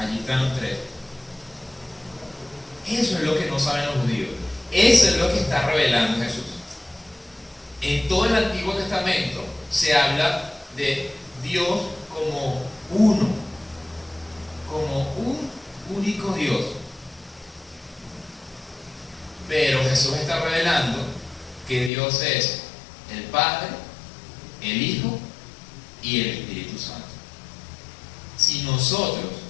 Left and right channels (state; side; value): drops out; right; at 21.9 s